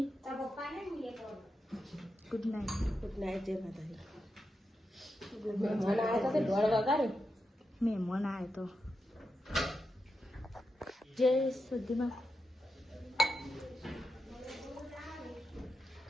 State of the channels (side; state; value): both; normal; correlation 0.87